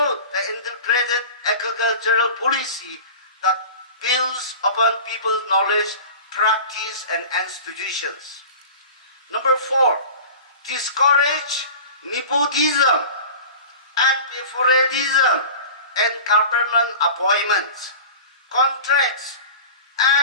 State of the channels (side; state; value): both; inverted; correlation -0.36